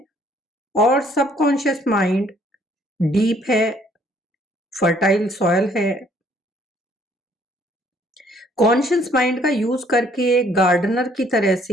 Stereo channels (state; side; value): normal; both; correlation 0.63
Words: और सबकॉन्शियस माइंड डीप है, फर्टाइल सॉयल है। कॉन्शियस माइंड का यूज करके गार्डनर की तरह